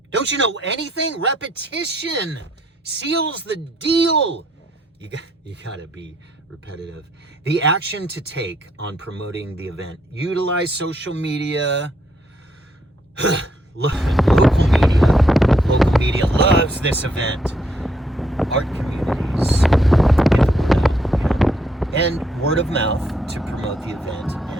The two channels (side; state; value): both; normal; correlation 0.72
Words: Don't you know anything? Repetition seals the deal. You got to be repetitive. The action to take on promoting the event. Utilize social media. Local media loves this event. Art communities. And word of mouth to promote the event